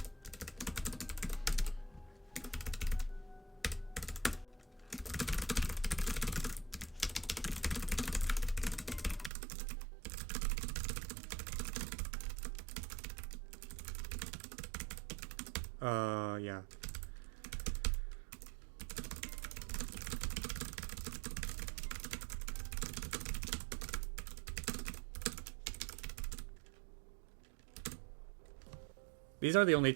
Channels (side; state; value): left; drops out; at 9.3 s